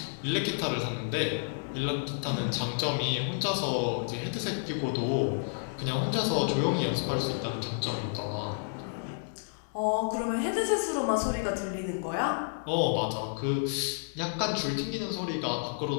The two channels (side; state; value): right; silent; digital silence